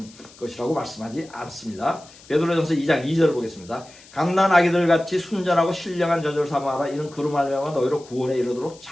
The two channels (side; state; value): left; noise; hiss, 23 dB below the sound